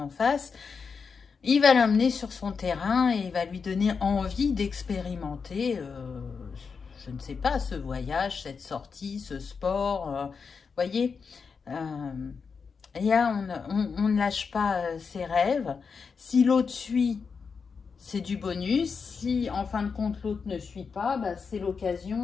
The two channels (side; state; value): right; quieter; 5.5 dB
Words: face, il va l'amener sur son terrain et il va lui donner envie d'expérimenter, je ne sais pas, ce voyage, cette sortie, ce sport. Voyez, là, on ne lâche pas ses rêves. Si l'autre suit, c'est du bonus. Si, en fin de compte, l'autre ne suit pas, c'est